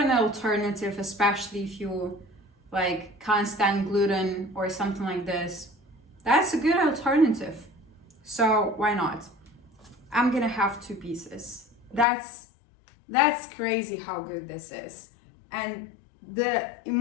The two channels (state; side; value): drops out; right; at 12.1 s